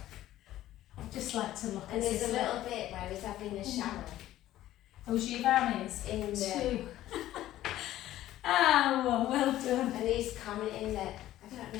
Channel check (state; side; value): quieter; right; 14.0 dB